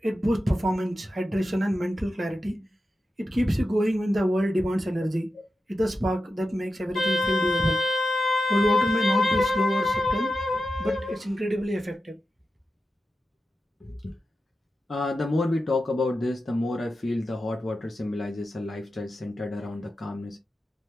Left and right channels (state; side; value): normal; both; correlation 0.90